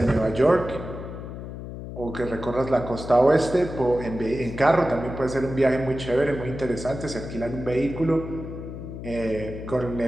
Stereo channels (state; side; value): noise; left; hum, 9 dB below the sound